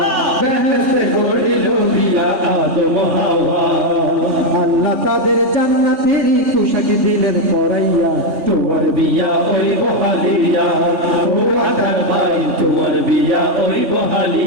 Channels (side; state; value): left; late; 3.4 ms